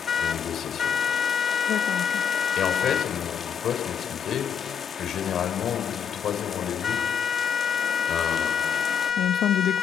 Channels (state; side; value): quieter; right; 7.7 dB